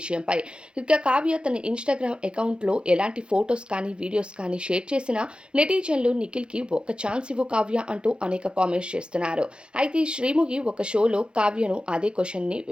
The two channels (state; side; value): late; left; 0.054 ms